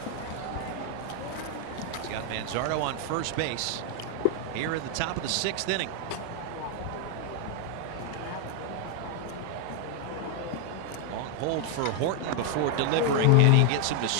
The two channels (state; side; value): different; both; correlation 0.00